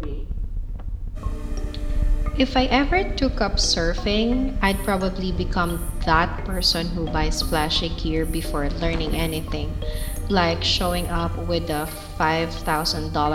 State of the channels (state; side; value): identical; both; correlation 1.00